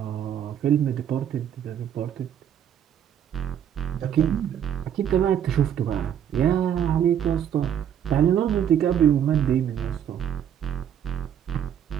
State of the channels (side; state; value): left; quieter; 9.4 dB